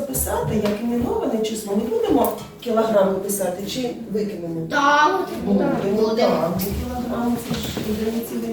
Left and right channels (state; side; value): identical; both; correlation 1.00